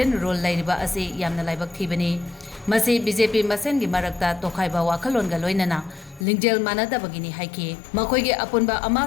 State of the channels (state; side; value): drops out; right; at 6.2 s